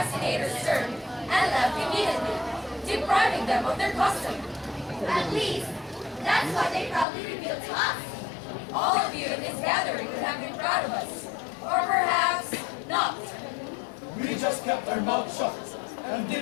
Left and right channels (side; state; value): right; drops out; at 7.1 s